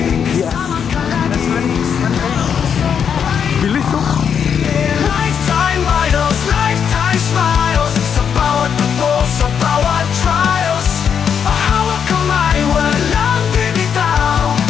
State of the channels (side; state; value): right; quieter; 7.5 dB